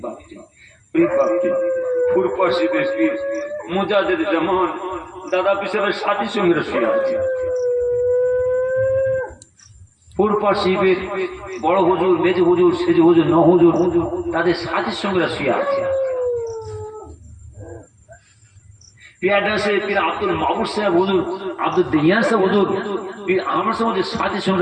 মুজাহিদ জামান দাদা পিসাবের সাথী সঙ্গীরা শুয়ে আছে। ফুরপা শিবের বড় হুজুর, মেজ হুজুর, সেজ হুজুর, ন হুজুর, তাদের সাথীর সঙ্গীরা শুয়ে আছে। পীর আব্দুল মাহবুব সাহেব হুজুর, আব্দুল দিয়ান সাহেব হুজুর, পীর আহমদ সাহেব হুজুর সাথীর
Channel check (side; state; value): both; identical; correlation 1.00